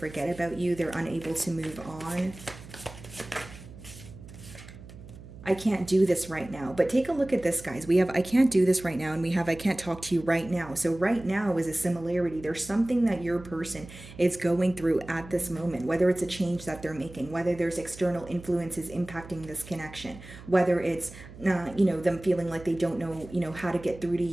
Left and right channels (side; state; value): right; noise; hum, 16 dB below the sound